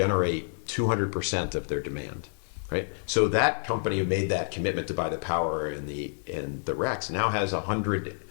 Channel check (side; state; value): right; silent; digital silence